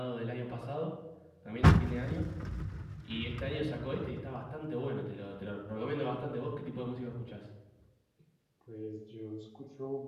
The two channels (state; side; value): identical; both; correlation 1.00